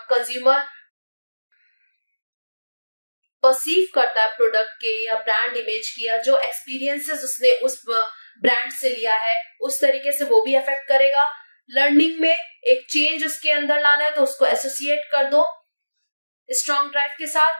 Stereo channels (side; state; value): both; inverted; correlation -1.00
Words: कंज्यूमर परसीव करता है प्रोडक्ट के या ब्रांड इमेज की, या जो एक्सपीरियंसेस उसने उस ब्रांड से लिया है, उस तरीके से वो भी अफेक्ट करेगा. लर्निंग में एक चेंज उसके अंदर लाना है तो उसको एसोसिएट कर दो स्ट्रॉन्ग ड्राइव के